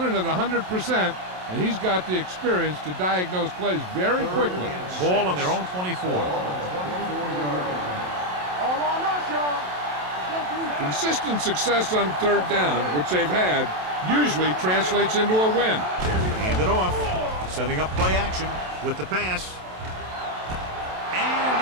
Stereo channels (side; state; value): left; late; 27 ms